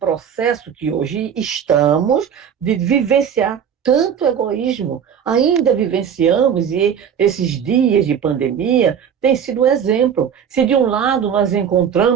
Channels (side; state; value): left; quieter; 8.1 dB